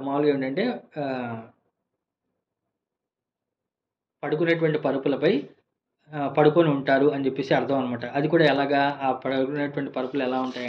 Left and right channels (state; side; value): identical; both; correlation 1.00